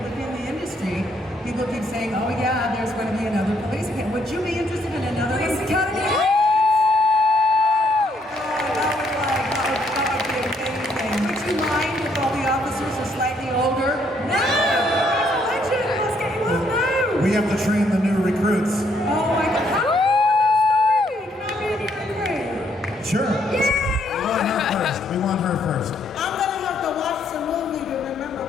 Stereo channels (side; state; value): both; normal; correlation 0.70